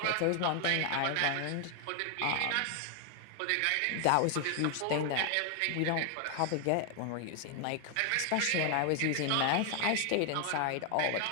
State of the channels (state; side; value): different; both; correlation 0.00